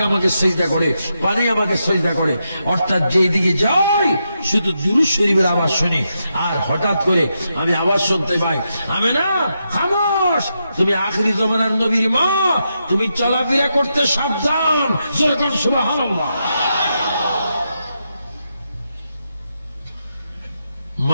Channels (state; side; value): inverted; both; correlation -0.84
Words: আমাকে সেজদা করে, পানি আমাকে সেজদা করে। অর্থাৎ যেই দিকে যাই শুধু দুরূদ শরীফের আওয়াজ শুনি। আর হঠাৎ করে আমি আওয়াজ শুনতে পাই, আমেনা খামোশ, তুমি আখিরি জামানার নবীর মা, তুমি চলাফেরা করতে সাবধান। যেরকম সুবহানাল্লাহ।